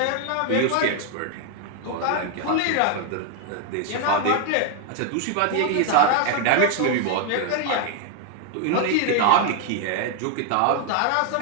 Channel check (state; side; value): different; both; correlation 0.01